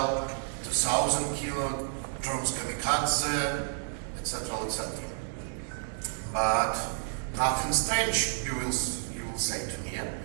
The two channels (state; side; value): silent; left; digital silence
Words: 2,000 kilo, drones kamikaze, etc., etc. But nothing strange, you will say to me, yeah?